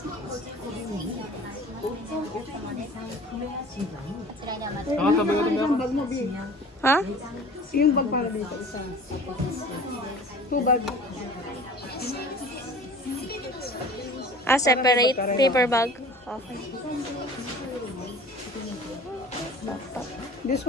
Nakatabi ko Isang bag mo, B. Ha? Yung bag para dito, isa. 2 bag. Ah, separate paper bag. Okay. This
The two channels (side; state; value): both; normal; correlation 0.44